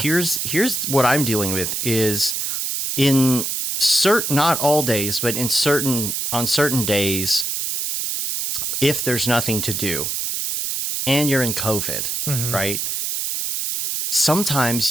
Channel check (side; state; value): right; noise; hiss, 2 dB below the sound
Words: Here's what I'm dealing with is in not all days, but on certain days, if there's nothing to do and you're in COVID, right?